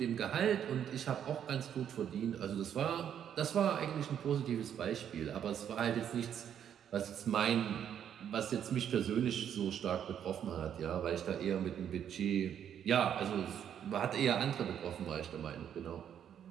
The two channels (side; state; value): left; quieter; 9.2 dB